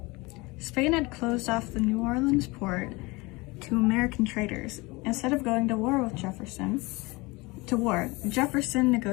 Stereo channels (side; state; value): right; quieter; 24.1 dB